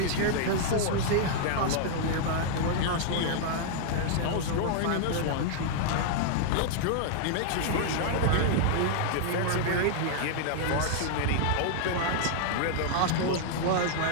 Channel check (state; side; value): different; both; correlation -0.01